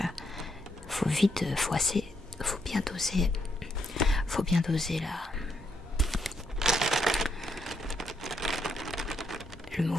faut bien doser le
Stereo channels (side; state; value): both; normal; correlation 0.77